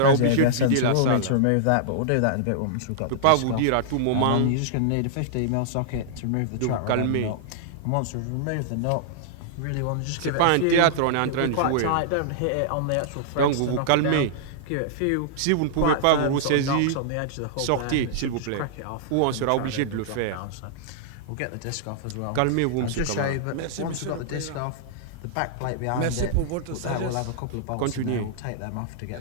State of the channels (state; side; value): different; both; correlation -0.01